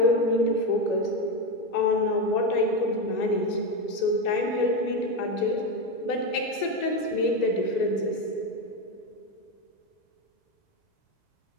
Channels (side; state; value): right; late; 2.0 ms